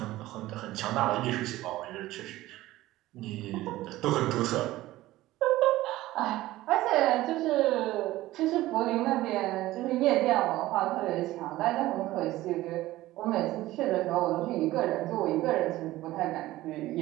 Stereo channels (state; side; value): quieter; left; 16.6 dB